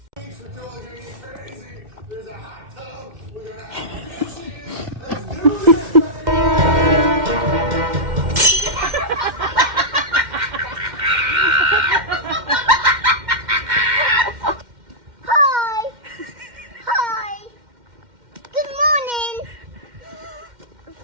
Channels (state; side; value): late; left; 2.1 ms